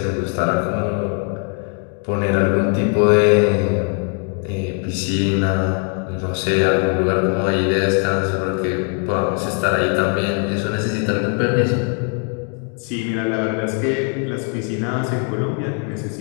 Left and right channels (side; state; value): right; quieter; 39.9 dB